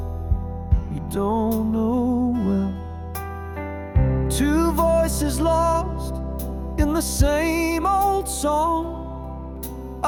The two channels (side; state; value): both; identical; correlation 1.00